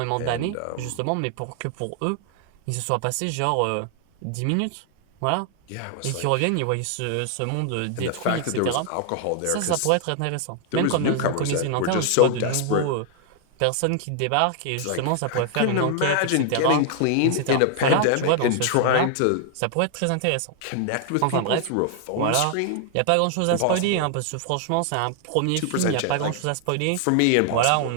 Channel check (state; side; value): different; both; correlation 0.00